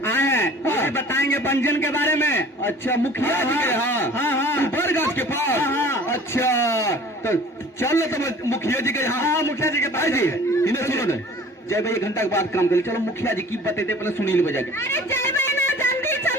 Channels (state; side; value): normal; both; correlation 0.47